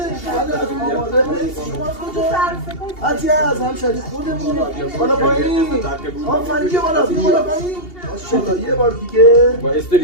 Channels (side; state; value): right; late; 2.8 ms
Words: از آماده شما از کجا؟ عطیه از همشهری خودمون. بالا پایین آفرین بیا بالا پایین ماشاءالله. یه بار دیگه با